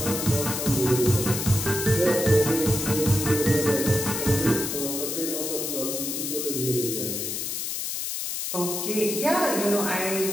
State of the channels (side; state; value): left; noise; hiss, 3 dB below the sound